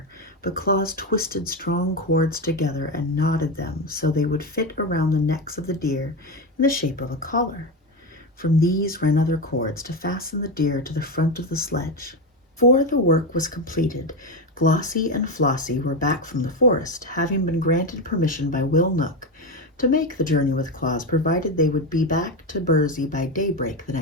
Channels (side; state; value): both; normal; correlation 0.14